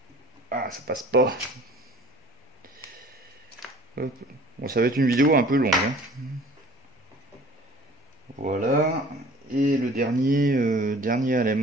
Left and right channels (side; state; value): both; normal; correlation 0.48